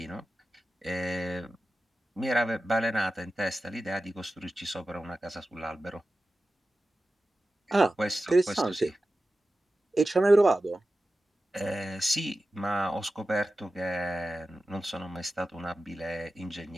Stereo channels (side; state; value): both; normal; correlation 0.94